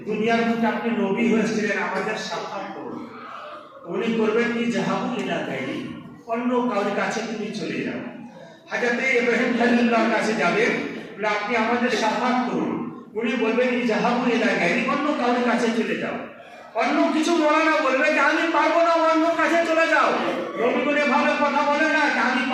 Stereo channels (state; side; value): identical; both; correlation 1.00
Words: দুনিয়ার বুকে আপনি নবী হয়েছিলেন, আমাদের সাক্ষাৎ করুন। উনি করবেন কি, জাহাবু ইলা গায়রি, অন্য কারোর কাছে তুমি চলে যাও। হযরত ইব্রাহিম খলিলুল্লাহর কাছে যাবেন, বলে আপনি আমাদের সাক্ষাৎ করুন। উনি বলবেন জাহাবু ইলা গায়রি, অন্য কারোর কাছে চলে যাও। অন্য কিছু মৌলানা বলবে যে আমি পারবো না, অন্য কাছে চলে যাও। নবীগুলো ভাবে কথা বলে না, আমি